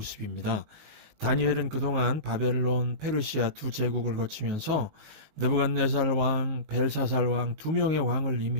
다니엘은 그동안 바벨론, 페르시아 두 제국을 거치면서 느부갓네살 왕, 벨사살 왕 두 명의 왕을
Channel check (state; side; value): late; left; 19 ms